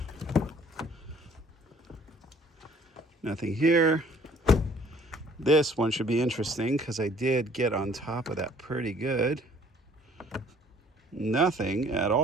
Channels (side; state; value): both; normal; correlation 0.57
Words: Nothing here. This one should be interesting because I did get on top of that pretty good. Nothing at